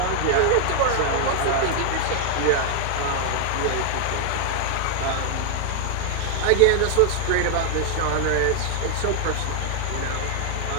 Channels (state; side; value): different; both; correlation 0.00